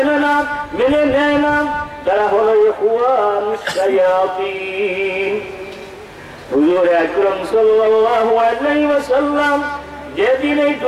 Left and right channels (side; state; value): both; identical; correlation 1.00